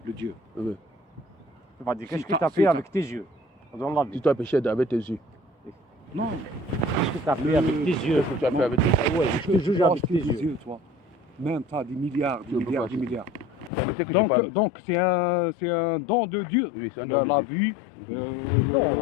le Dieu. oui. Tu vas dire, qu'est-ce Si que t'as- tu as si fait t'as- avec tes yeux dans la Si vie? tu as péché avec tes yeux, Non, Qu'est-ce que tu as fait avec tes yeux? qu'est-ce que tu as fait avec tes yeux? Ouais, je te juge toi, avec tes yeux. toi. Même tu as des milliards, Tu peux pas. des milliards. Permettez que je parle. Donc c'est un don de Dieu. Oui, c'est un don de La Dieu. vue, Non.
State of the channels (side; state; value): right; drops out; at 13.7 s